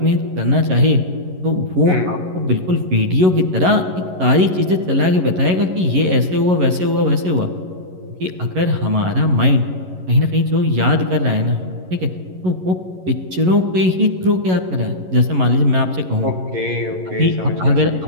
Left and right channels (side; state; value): left; late; 11 ms